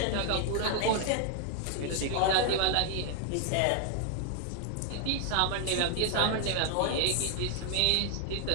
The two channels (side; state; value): both; different; correlation 0.00